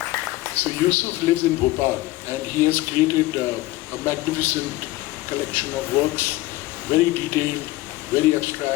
So, Yusuf lives in Bhopal, and he has created a magnificent collection of works, very detailed, very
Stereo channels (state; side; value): quieter; right; 18.3 dB